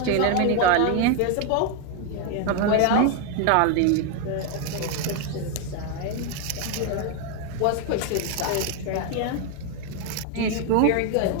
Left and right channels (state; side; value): different; both; correlation 0.01